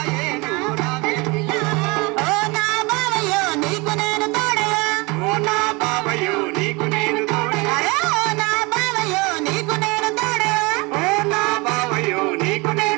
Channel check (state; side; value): quieter; left; 26.2 dB